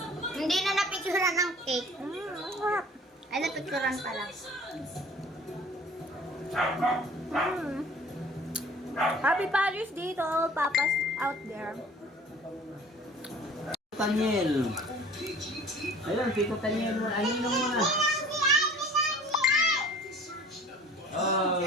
Hindi na napicturan ng cake. Mm. Ay, napicturan pala. Mm. Happy Father's Day to all papas out there. Tanyel. Ayun, Tito Tanyel. Aninong mo na.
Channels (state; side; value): normal; both; correlation 0.47